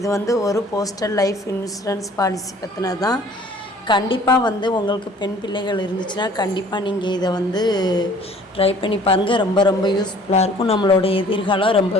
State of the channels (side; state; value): both; normal; correlation 0.53